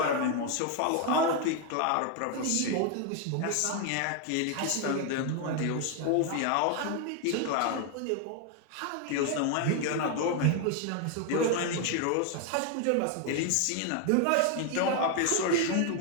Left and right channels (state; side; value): different; both; correlation 0.01